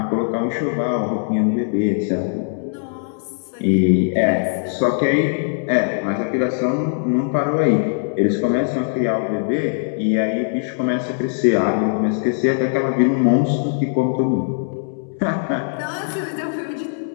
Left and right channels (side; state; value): right; silent; 65 dB below the other